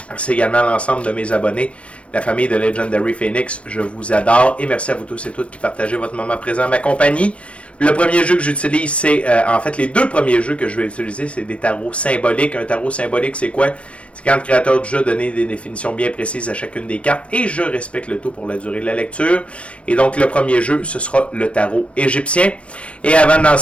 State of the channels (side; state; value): right; late; 0.061 ms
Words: Merci également à l'ensemble de mes abonnés. La famille de Legendary Phoenix, je vous adore. Et merci à vous tous et toutes qui partagez votre moment présent à ma compagnie. Le premier jeu que j'utilise, c'est... en fait, les deux premiers jeux que je vais utiliser, c'est des tarots symboliques. Un tarot symbolique, c'est quoi? C'est quand le créateur du jeu a donné des définitions bien précises à chacune des cartes. Et je respecte le tout pour la durée de la lecture. Et donc, le premier jeu, ce sera le tarot égyptien. Et avant de